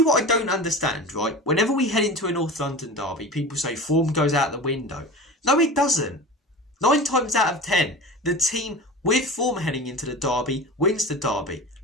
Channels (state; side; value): normal; both; correlation 0.33